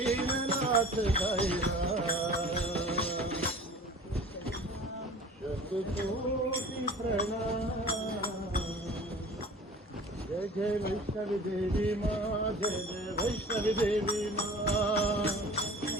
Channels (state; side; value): normal; both; correlation 0.43